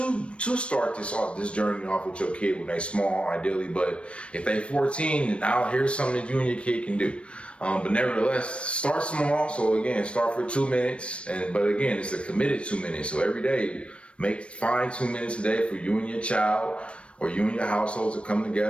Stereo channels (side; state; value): right; late; 0.060 ms